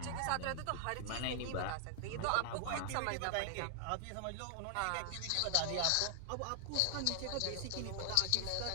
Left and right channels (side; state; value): both; different; correlation 0.00